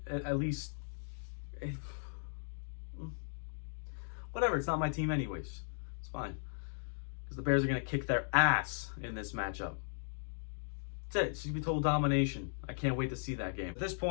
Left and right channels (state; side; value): silent; right; digital silence